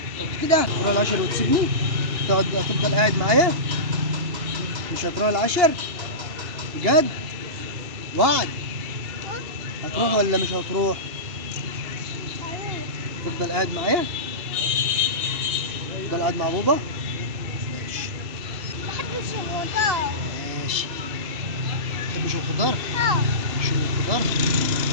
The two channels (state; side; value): late; left; 2.9 ms